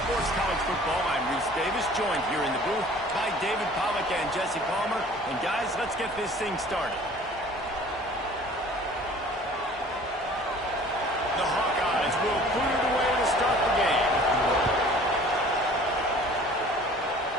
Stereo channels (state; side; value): normal; both; correlation 0.49